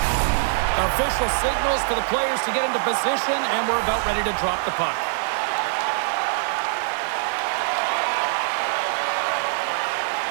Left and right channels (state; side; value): silent; left; digital silence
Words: Official signals for the players to get into position, and we're about ready to drop the puck.